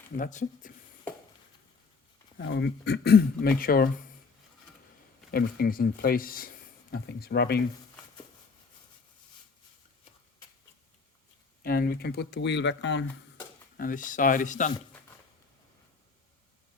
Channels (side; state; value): right; quieter; 4.7 dB